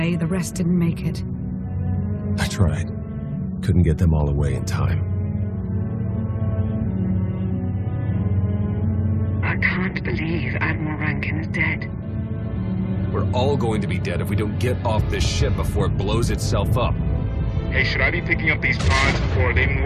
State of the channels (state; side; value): identical; both; correlation 1.00